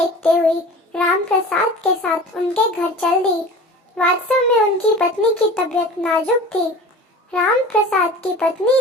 हुई राम प्रसाद के साथ उनके घर चल दी। वास्तव में उनकी पत्नी की तबीयत नाजुक थी। राम प्रसाद की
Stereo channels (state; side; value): normal; both; correlation 0.38